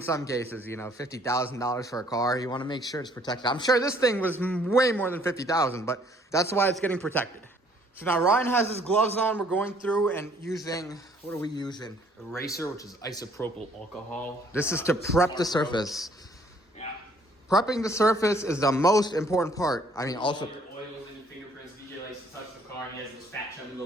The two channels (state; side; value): normal; both; correlation 0.61